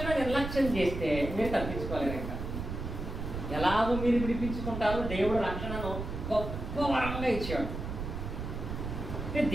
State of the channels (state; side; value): noise; right; rumble, 5 dB below the sound